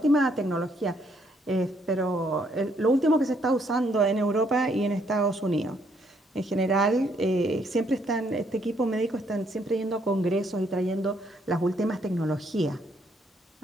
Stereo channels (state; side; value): normal; both; correlation 0.70